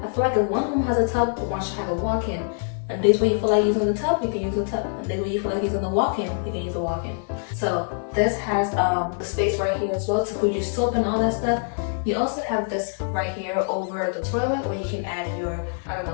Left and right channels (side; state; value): right; silent; 56 dB below the other